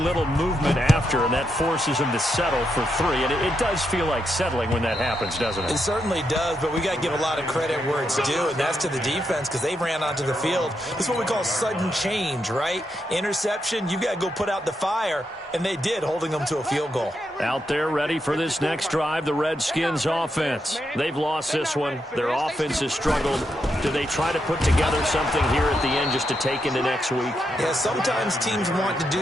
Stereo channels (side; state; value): both; normal; correlation 0.82